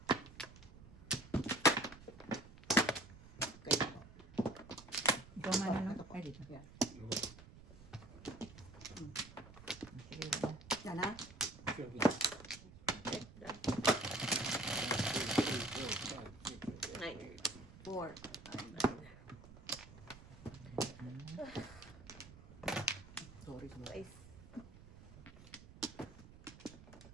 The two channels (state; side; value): noise; right; rumble, 18 dB below the sound